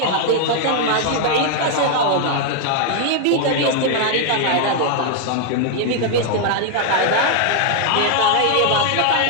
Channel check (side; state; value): both; different; correlation 0.00